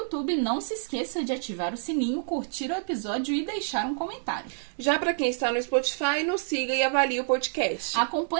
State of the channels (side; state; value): left; silent; 60 dB below the other